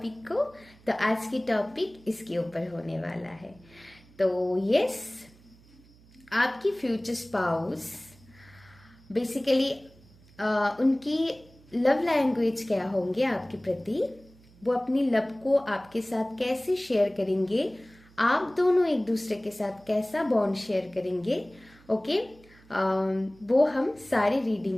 को, तो आज की टॉपिक इसके ऊपर होने वाला है। तो यस, आपकी फ्यूचर स्पाउस बेसिकली उनकी लव लैंग्वेज क्या होंगे आपके प्रति, वो अपनी लव को आपके साथ कैसे शेयर करेंगे, आप दोनों एक दूसरे के साथ कैसा बॉन्ड शेयर करेंगे। ओके, वो हम सारे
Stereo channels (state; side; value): noise; right; hum, 26 dB below the sound